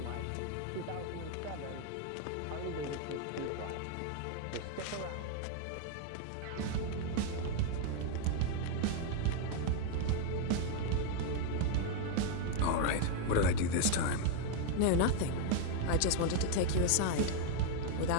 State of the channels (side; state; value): both; different; correlation 0.00